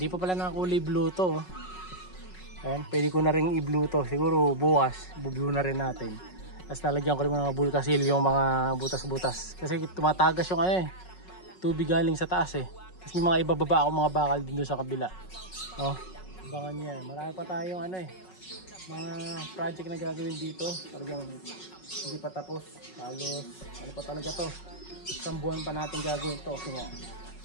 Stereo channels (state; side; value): late; right; 5.4 ms